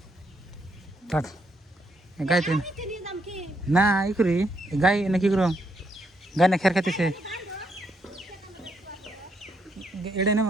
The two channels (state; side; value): normal; both; correlation 0.76